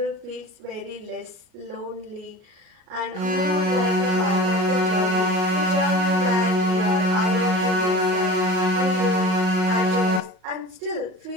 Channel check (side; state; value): left; late; 38 ms